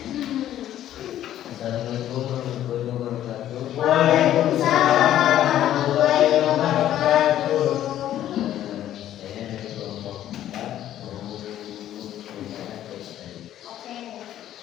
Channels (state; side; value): quieter; right; 12.0 dB